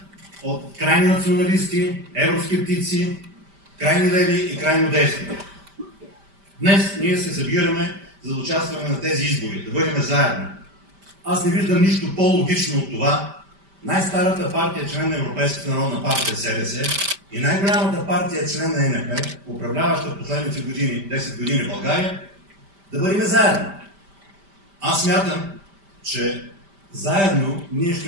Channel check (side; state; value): left; late; 5.1 ms